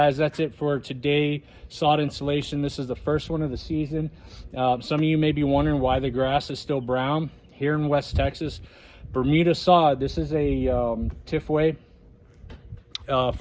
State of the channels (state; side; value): identical; both; correlation 1.00